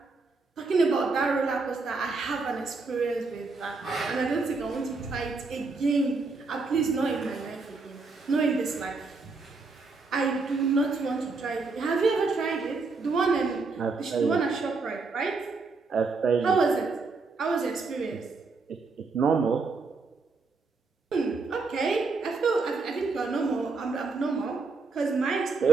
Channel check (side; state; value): left; quieter; 4.0 dB